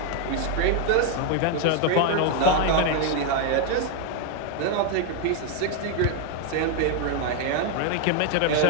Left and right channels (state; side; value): different; both; correlation 0.01